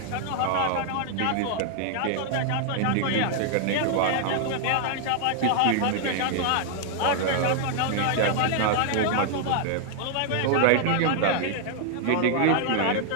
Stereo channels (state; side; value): different; both; correlation 0.00